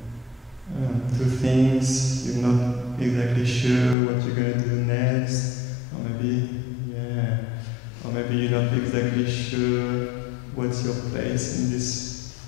things? You're not exactly sure what you're going to do next, or maybe you're not exactly sure what's your place in this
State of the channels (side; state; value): right; drops out; at 4.0 s